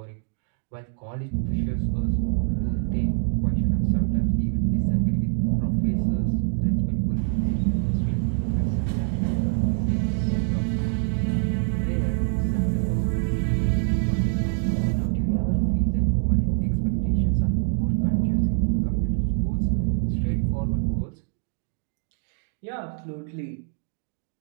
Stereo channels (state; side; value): silent; left; digital silence